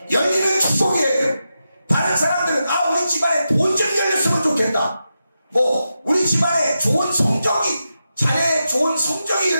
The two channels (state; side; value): inverted; both; correlation -0.89